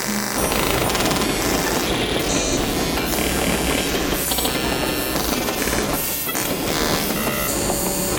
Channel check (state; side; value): identical; both; correlation 1.00